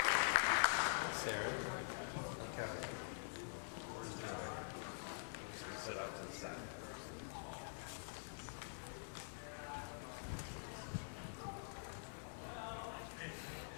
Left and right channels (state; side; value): silent; right; digital silence